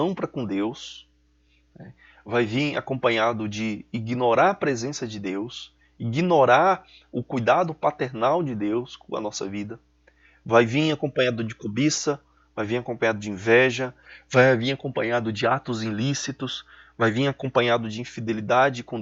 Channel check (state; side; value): identical; both; correlation 1.00